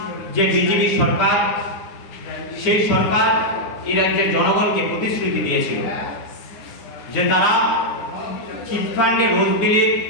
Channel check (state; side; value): late; right; 9.7 ms